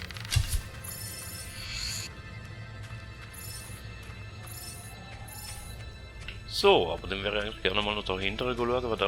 So, aber dann wäre ich eigentlich gerne mal noch dahinter schauen, was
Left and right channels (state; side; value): identical; both; correlation 1.00